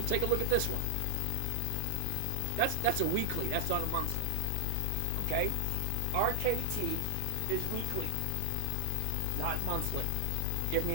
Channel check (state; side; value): different; both; correlation 0.00